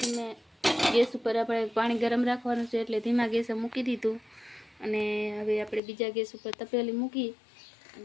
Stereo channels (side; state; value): right; drops out; at 5.8 s